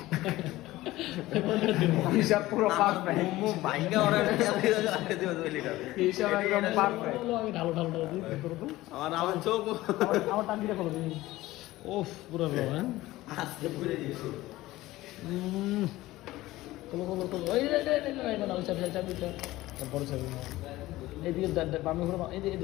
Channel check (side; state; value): right; quieter; 17.4 dB